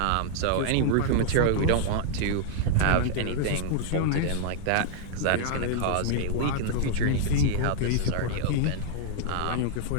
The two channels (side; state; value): both; different; correlation 0.00